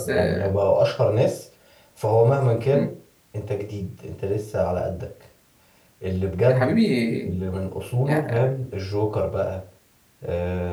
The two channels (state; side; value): identical; both; correlation 1.00